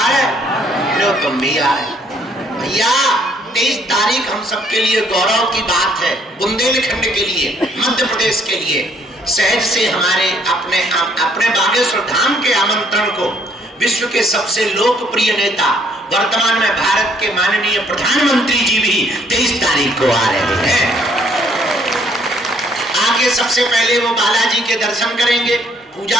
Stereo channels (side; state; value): both; normal; correlation 0.65